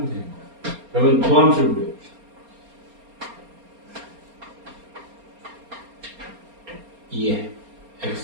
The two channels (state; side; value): late; left; 4.3 ms